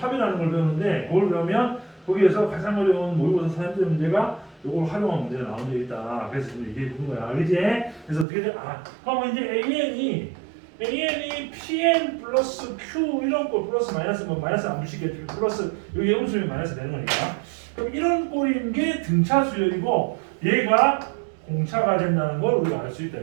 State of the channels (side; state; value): left; drops out; at 8.2 s